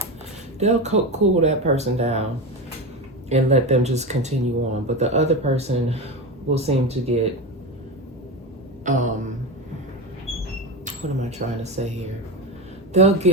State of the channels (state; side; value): normal; both; correlation 0.19